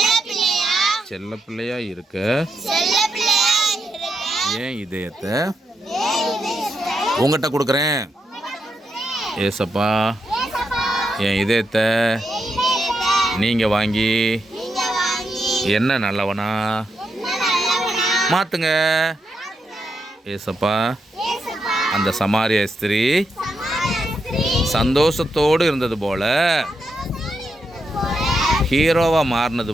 செல்ல பிள்ளையா இருக்க என் இதயத்தை உங்கள்கிட்ட கொடுக்குறேன். ஏசப்பா, என் இதயத்தை நீங்கள் வாங்கி என்ன நல்லவனா மாற்றுங்க. ஏசப்பா, அந்த சமாரிய ஸ்திரீ சந்தோஷத்தோடு இருந்தது போல, ஹீரோவாக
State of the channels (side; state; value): both; normal; correlation 0.83